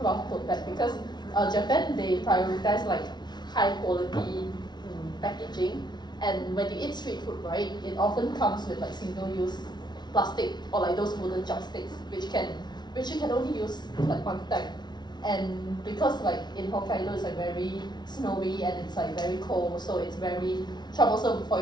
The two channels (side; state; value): right; late; 0.20 ms